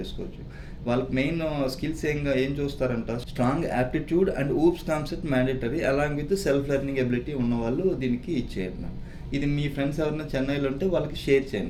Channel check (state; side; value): identical; both; correlation 1.00